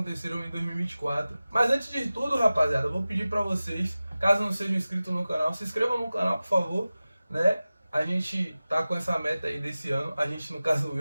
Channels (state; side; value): inverted; both; correlation -0.96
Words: em 2024. Mas antes de tudo, rapaziada, eu vou pedir pra vocês, caso não sejam inscritos no canal, se inscrevam no canal, por favor, né? A gente tá com essa meta aí desse ano, a gente, no caso